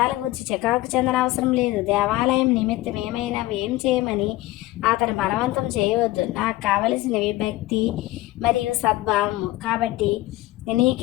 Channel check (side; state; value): right; quieter; 17.6 dB